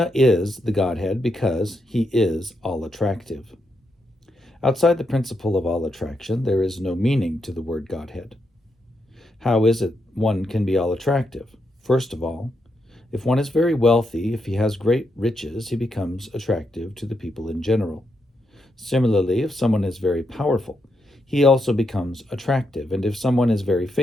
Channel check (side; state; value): both; normal; correlation 0.82